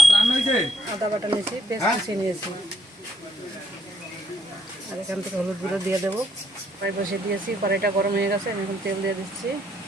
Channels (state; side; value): normal; both; correlation 0.71